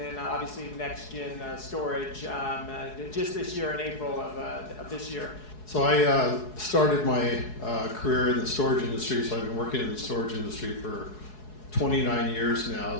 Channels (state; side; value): late; right; 4.7 ms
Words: obviously NexGen storage just this year in April of this year. So I started my career in the storage industry, so I've been working in the storage industry for 29 years now,